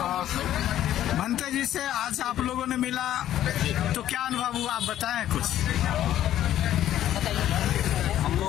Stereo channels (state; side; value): quieter; right; 12.1 dB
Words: भंते जी से आज आप लोगों ने मिला तो क्या अनुभव हुआ, आप बताएं कुछ। हम